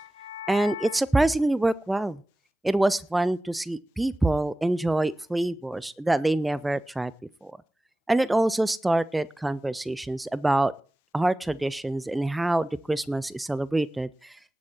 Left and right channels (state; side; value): normal; both; correlation 0.97